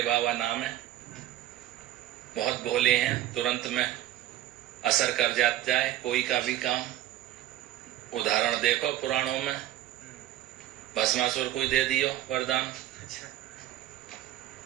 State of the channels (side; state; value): left; quieter; 13.5 dB